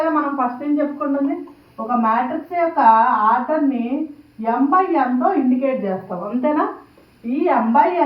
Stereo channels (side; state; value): both; identical; correlation 1.00